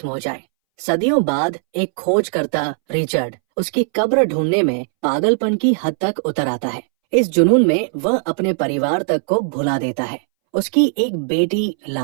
हो जाए। सदियों बाद एक खोजकर्ता रिचर्ड उसकी कब्र ढूंढने में पागलपन की हद तक उतर आता है। इस जुनून में वह अपने परिवार तक को भुला देता है। उसकी एक बेटी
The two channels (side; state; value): left; silent; 64 dB below the other